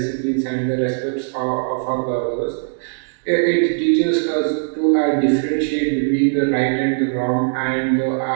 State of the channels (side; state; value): left; silent; digital silence